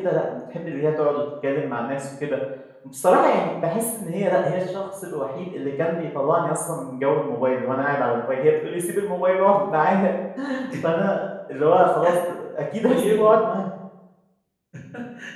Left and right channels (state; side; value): identical; both; correlation 1.00